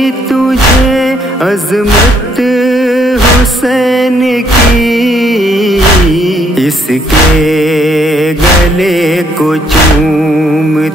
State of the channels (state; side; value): normal; both; correlation 0.69